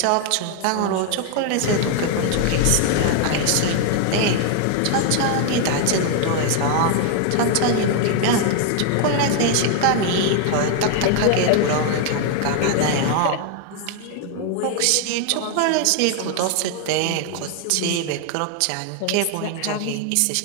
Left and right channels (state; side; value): different; both; correlation 0.00